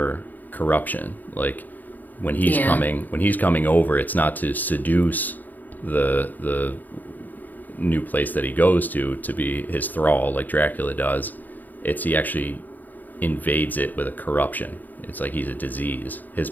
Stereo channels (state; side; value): late; right; 0.086 ms